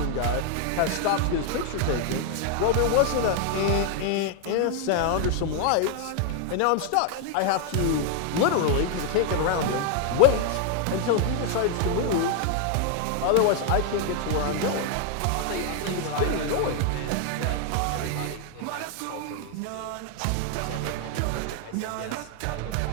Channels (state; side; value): different; both; correlation 0.00